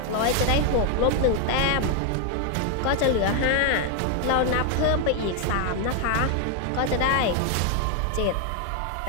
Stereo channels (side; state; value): both; different; correlation 0.00